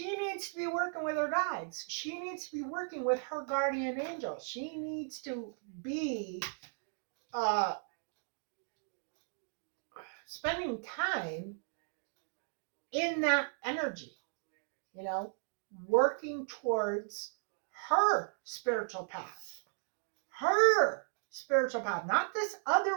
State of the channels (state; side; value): silent; left; digital silence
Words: needs to be working with her guides. She needs to be working with her guardian angel. She needs to be uh, spending time in that energy, you know, working towards her spiritual path. Her spiritual path, not this